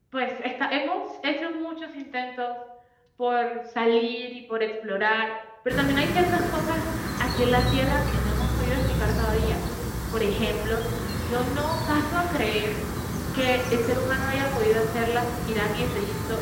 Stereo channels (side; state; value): both; identical; correlation 1.00